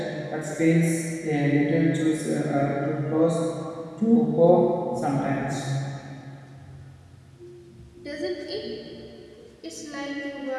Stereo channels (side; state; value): both; identical; correlation 1.00